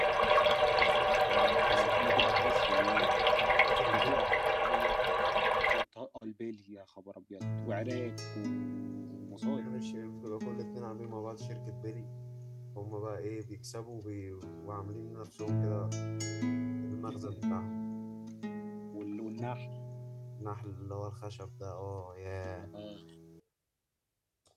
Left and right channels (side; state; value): both; identical; correlation 1.00